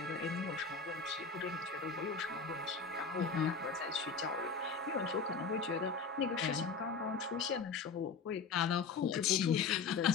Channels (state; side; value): quieter; right; 5.1 dB